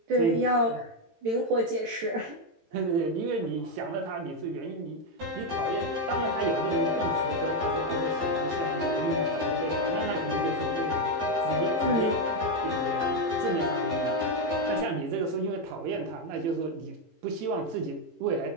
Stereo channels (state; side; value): late; left; 18 ms